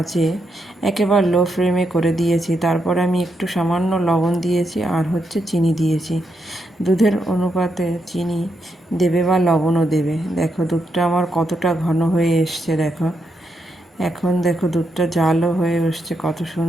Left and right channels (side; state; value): both; normal; correlation 0.81